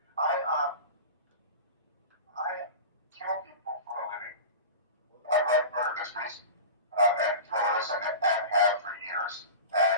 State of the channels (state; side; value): inverted; both; correlation -0.32